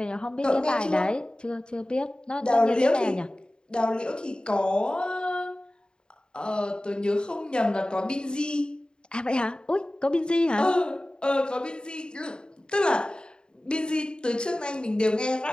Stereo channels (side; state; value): right; late; 0.049 ms